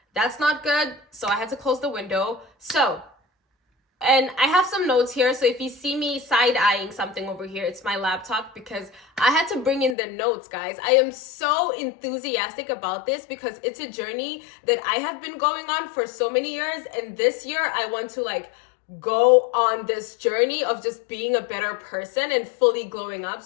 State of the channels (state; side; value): drops out; right; at 10.0 s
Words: that's not good. So I had to close the window. And I have some notes here. So if you see me side-eyeing something over here, it's my laptop because I had to bring in the notes, guys. I am so enthusiastic about this because it's a journey that I have been going on for so many years. And this year I want to go on this journey of just being a better person and fully glowing up.